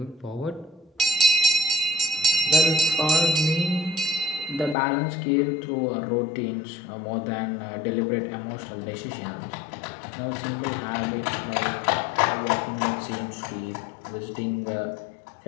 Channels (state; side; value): drops out; right; at 4.8 s